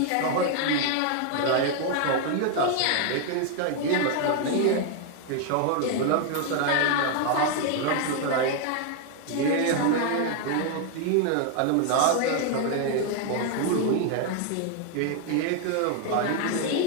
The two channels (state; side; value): different; both; correlation 0.00